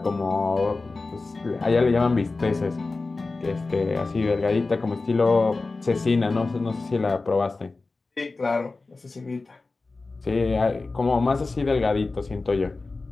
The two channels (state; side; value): quieter; right; 3.6 dB